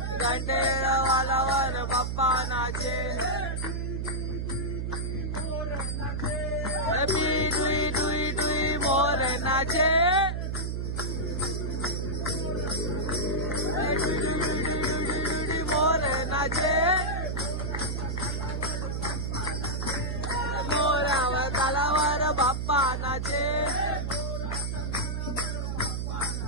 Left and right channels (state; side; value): noise; right; hum, 2 dB below the sound